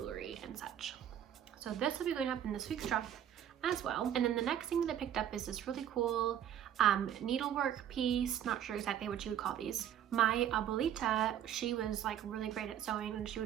and such. So this will be going up in this week's drop as well. And then the next thing that I picked up is this really cool needlework piece. Not sure exactly what you would call these. My abuelita, she was like really great at sewing, and she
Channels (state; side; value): quieter; left; 10.1 dB